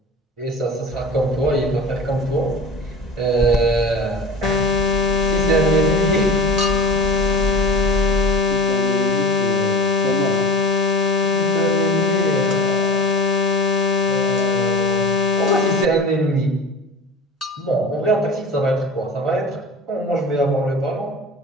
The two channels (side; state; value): both; normal; correlation 0.34